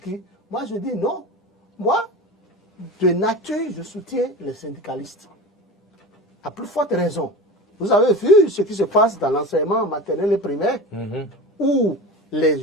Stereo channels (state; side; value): normal; both; correlation 0.31